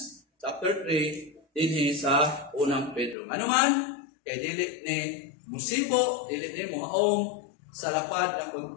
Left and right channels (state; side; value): drops out; right; at 3.2 s